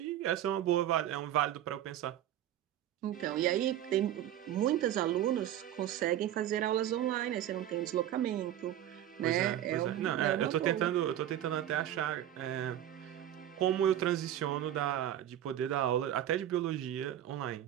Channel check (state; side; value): quieter; left; 11.7 dB